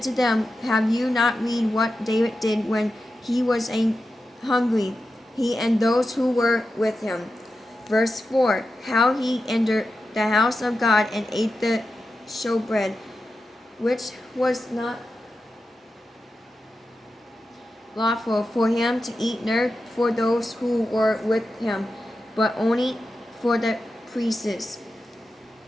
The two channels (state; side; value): normal; both; correlation 0.91